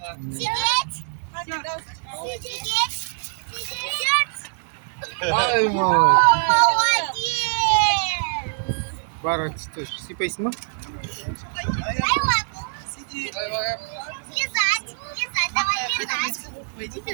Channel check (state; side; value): silent; left; 61 dB below the other